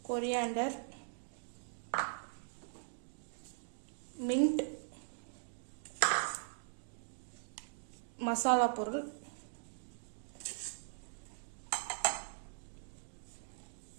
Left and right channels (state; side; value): silent; left; digital silence